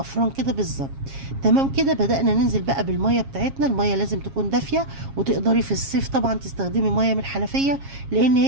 كده بالظبط. تمام كده. بدأنا ننزل بقى بالميه بتاعتنا. الميه لازم تكون دافيه، وتقدري في الصيف طبعا تستخدمي ميه من الحنفيه، لان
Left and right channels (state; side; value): late; left; 7.4 ms